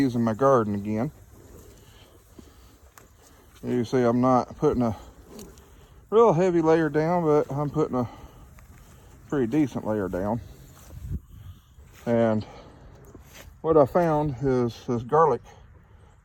my garden again. You see I'm not putting a real heavy layer down, but I'm putting a pretty decent layer down. And what I found is this garlic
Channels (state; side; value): identical; both; correlation 1.00